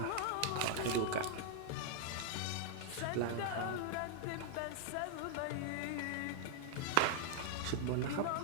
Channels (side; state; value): both; different; correlation -0.01